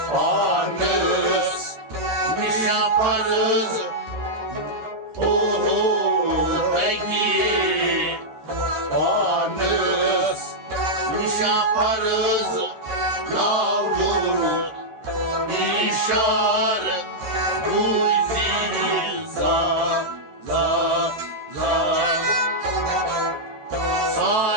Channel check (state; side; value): late; left; 13 ms